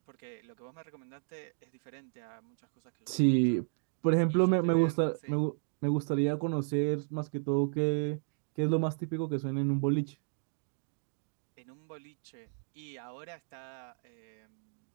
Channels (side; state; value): left; silent; digital silence